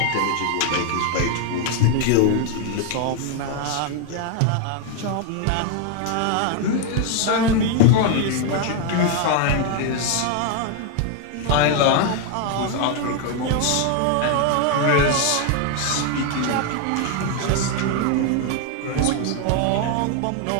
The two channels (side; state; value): both; different; correlation 0.01